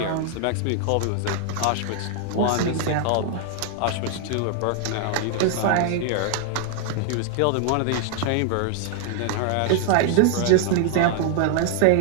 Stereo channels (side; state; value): both; different; correlation 0.00